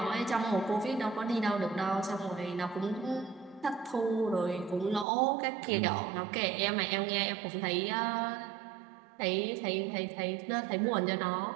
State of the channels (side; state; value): left; drops out; at 5.1 s